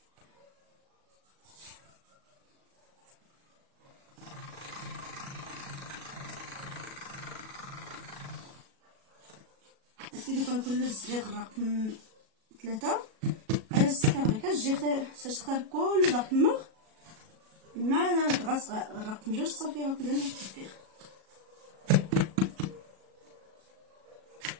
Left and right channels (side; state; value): left; late; 37 ms